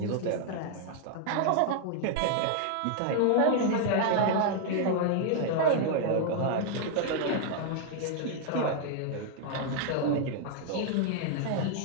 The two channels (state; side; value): different; both; correlation 0.00